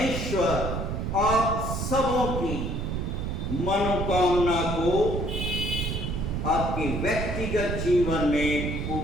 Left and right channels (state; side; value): noise; right; rumble, 2 dB below the sound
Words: आप सबों की मनोकामना को आपके व्यक्तिगत जीवन में